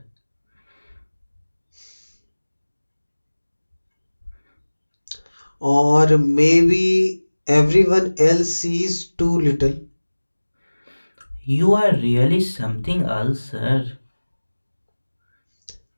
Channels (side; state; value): both; inverted; correlation -1.00